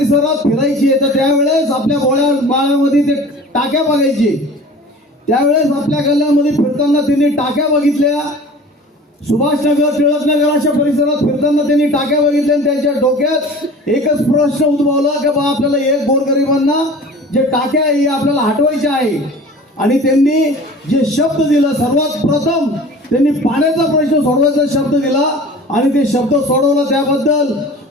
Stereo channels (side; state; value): both; normal; correlation 0.42